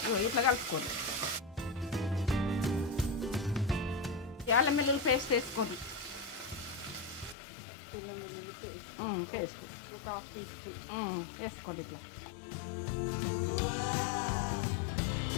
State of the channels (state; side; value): drops out; right; at 7.4 s